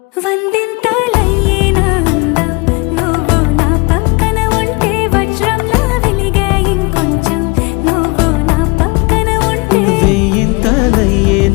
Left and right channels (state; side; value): quieter; right; 27.8 dB